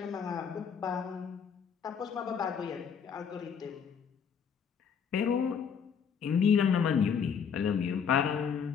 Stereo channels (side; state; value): right; quieter; 7.0 dB